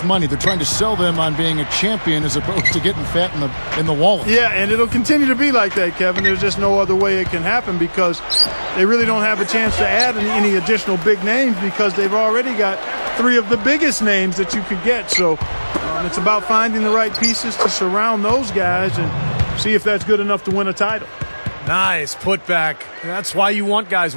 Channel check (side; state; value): both; inverted; correlation -1.00